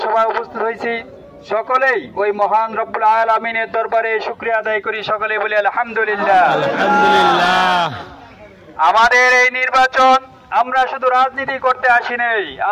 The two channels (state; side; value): identical; both; correlation 1.00